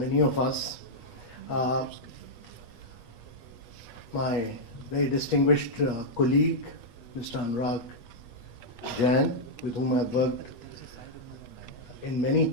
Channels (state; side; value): late; right; 8.3 ms